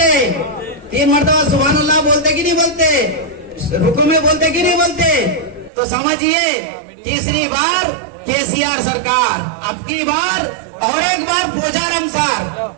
3 मरतबा सुभान अल्लाह बोलते कि नहीं बोलते? रुकू में बोलते कि नहीं बोलते? तो समझिए, तीसरी बार केसीआर सरकार, अब की बार और एक बार पोचारम सार,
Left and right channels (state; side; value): drops out; left; at 5.7 s